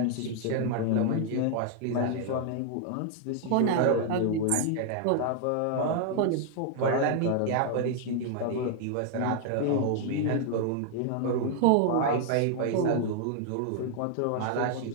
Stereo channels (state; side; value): different; both; correlation 0.00